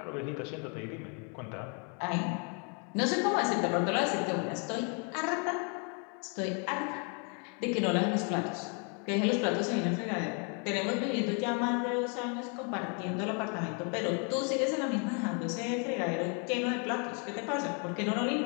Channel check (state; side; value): quieter; right; 37.6 dB